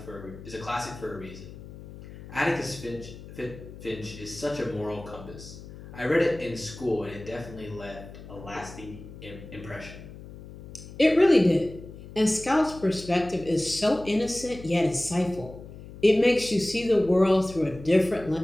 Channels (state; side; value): noise; left; hum, 15 dB below the sound